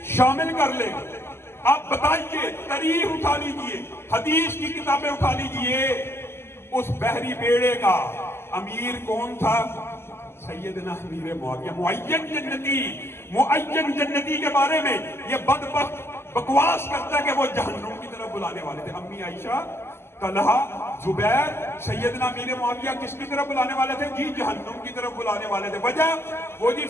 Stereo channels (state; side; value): late; right; 0.12 ms